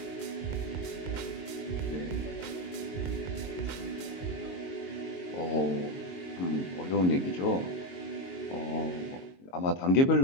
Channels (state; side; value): late; right; 22 ms